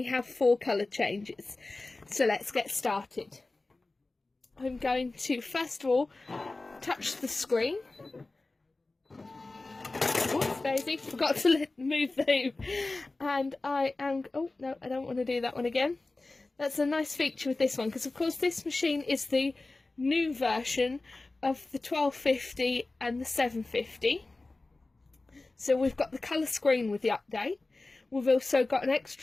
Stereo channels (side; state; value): right; quieter; 3.2 dB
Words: have 4 colour changes. So let's get started. I'm going to first of all touch the screen. Oops, Daisy, forgot to move the hoop. And I am, oh no, I don't want to do that one again. That's a nice feature with this one, because of course this machine is the new version of the 1250 and the 750. So we've got the colour screen with the update. We've also got an